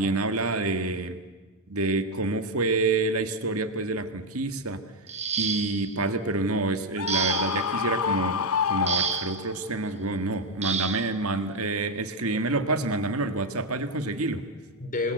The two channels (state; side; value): normal; both; correlation 0.04